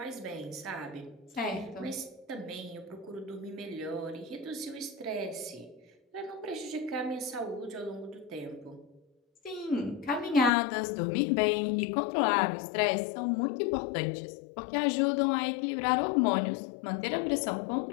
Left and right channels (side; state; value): right; drops out; at 10.5 s